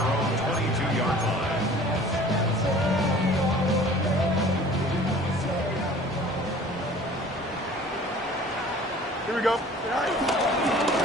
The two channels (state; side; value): normal; both; correlation 0.47